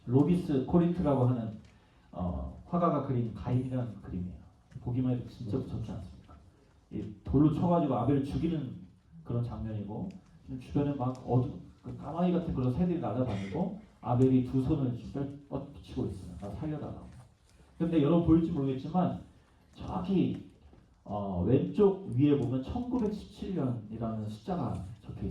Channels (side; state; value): both; identical; correlation 1.00